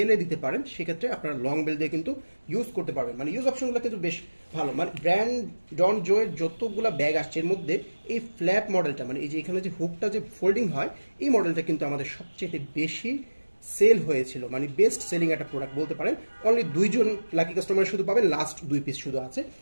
দিতে পারেন, সেক্ষেত্রে আপনারা লং বেল দিয়ে কিন্তু ইউজ করতে পারবেন। মানে ইউজ অপশনগুলো কিন্তু বেশ ভালো। মানে ব্র্যান্ড ডন জোয়ের যতগুলো ব্যাগ আসছে এর মধ্যে এই ফ্ল্যাপ মডেলটা, মানে এই যে এখানে যে হুকটা যে ফোল্ডিং হয়, এই মডেলটা কিন্তু আমাদের সবচেয়ে বেশি সেল হয়েছিল। মানে বেস্ট সেলিং একটা প্রোডাক্ট বলতে পারেন। অনলি দুইজন লাকি কাস্টমার শুধু পাবেন, লাস্ট 2 পিস শুধু আছে।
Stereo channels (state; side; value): inverted; both; correlation -1.00